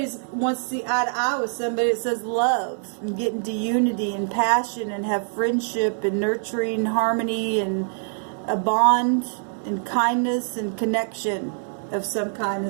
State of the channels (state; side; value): silent; left; 62 dB below the other